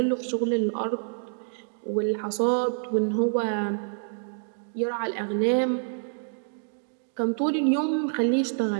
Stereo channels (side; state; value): left; silent; digital silence